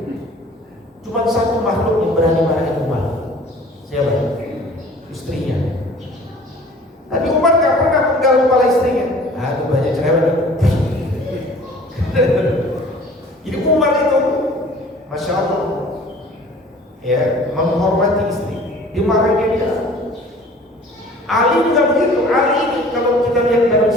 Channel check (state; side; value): normal; both; correlation 0.49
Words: Cuma satu makhluk yang berani marahin Umar. Siapa? Istrinya. Tapi Umar gak pernah penggal kepala istrinya. Aduh, banyak cerewet. Jadi Umar itu, masya Allah, ya, menghormati istri, dimarahin dia. Ali juga begitu. Ali ini kalau kita lihat dalam